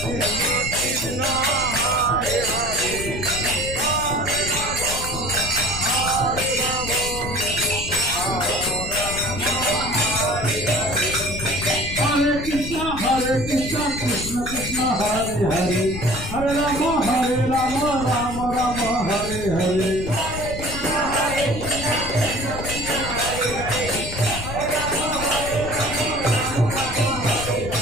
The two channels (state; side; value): noise; left; rumble, 8 dB below the sound